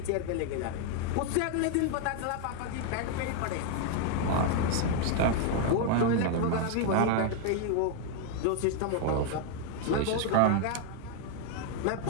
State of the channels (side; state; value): both; different; correlation 0.00